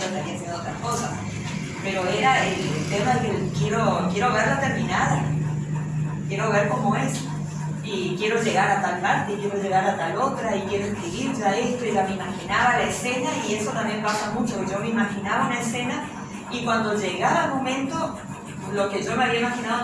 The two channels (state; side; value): identical; both; correlation 1.00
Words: estaría haciendo otras cosas. Pero era el tema de que quiero verla terminada, quiero ver cómo es, y quiero llegar a tal parte, y quiero llegar a tal otra, y quiero escribir ya esto, y ya me imaginaba la escena, y eso también pasa mucho, que yo me imaginaba una escena, y cuando llegaba el momento, lo que yo me había